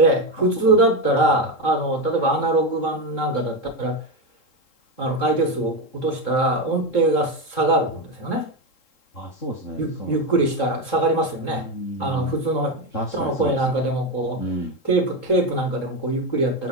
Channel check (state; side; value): late; right; 3.7 ms